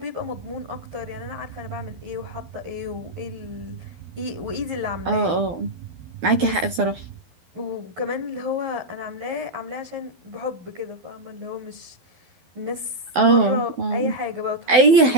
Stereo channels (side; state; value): left; late; 12 ms